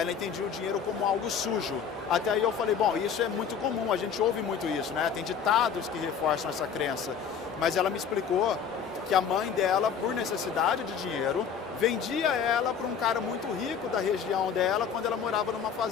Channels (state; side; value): quieter; right; 7.1 dB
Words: entendia o dinheiro como algo sujo. Até aí eu falei, bom, isso é muito comum, a gente ouve muito isso, né? Tem ditados que reforçam essa crença. Mas ela me explicou que a mãe dela, por necessidade de dinheiro, vendia ela para um cara muito rico da região dela quando ela morava numa